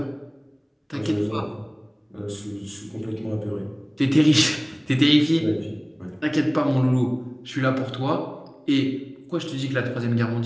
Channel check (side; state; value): both; identical; correlation 1.00